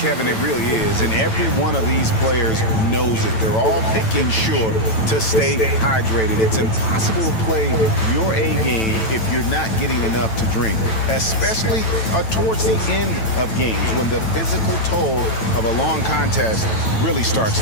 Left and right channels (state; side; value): late; right; 9.0 ms